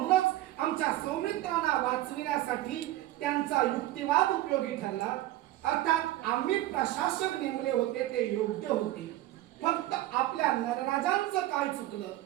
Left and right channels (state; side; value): quieter; left; 15.5 dB